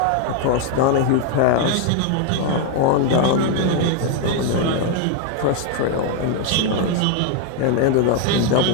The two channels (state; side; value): different; both; correlation 0.01